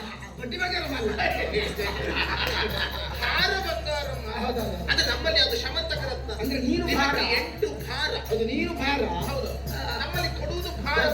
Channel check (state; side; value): identical; both; correlation 1.00